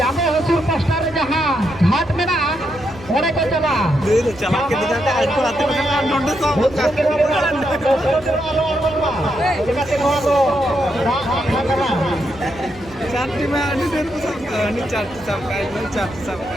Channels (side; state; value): both; normal; correlation 0.81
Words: हसूर पास्टर जहां घाट में ना ओरे को चला चला के दिखाते आज को आते हैं नोट सो चार्टी में आने देर को सब नहीं चार्टी सब का नहीं चार्टी सब